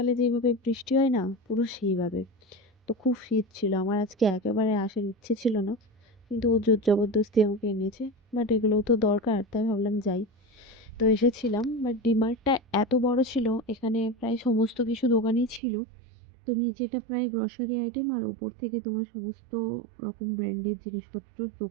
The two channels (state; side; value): drops out; left; at 15.6 s